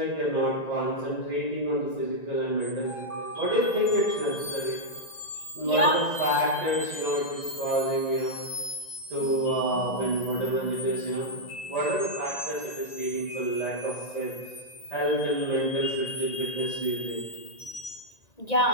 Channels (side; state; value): right; late; 1.9 ms